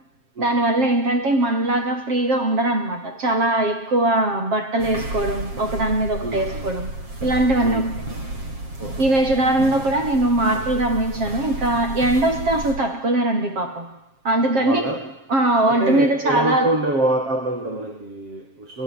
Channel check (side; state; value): left; late; 7.5 ms